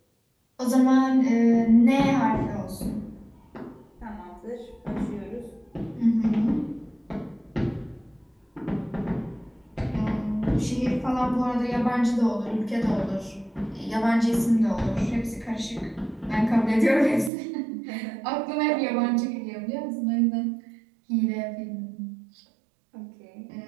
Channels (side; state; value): left; drops out; at 17.3 s